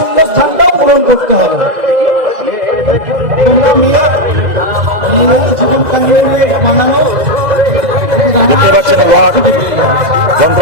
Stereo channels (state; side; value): late; left; 2.0 ms